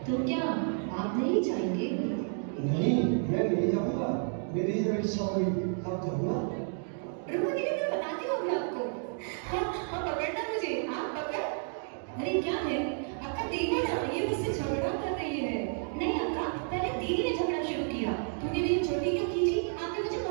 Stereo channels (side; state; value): left; silent; 57 dB below the other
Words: तो क्या आप नहीं जाएंगे? नहीं, मैं नहीं जाऊंगा। मेरी जब इच्छा हुई तब जाऊंगा। रुको दीदी, मैं बताती हूँ अभी आपको। हाँ, पकड़ना मुझे, आप पकड़। अरे क्या है? अक्का देखो ना, ये मुझसे झगड़ा कर रही है। नहीं अक्का, पहले दीदी ने झगड़ा शुरू किया। तूने मेरी छोटी क्यों खींची? आपने मुझे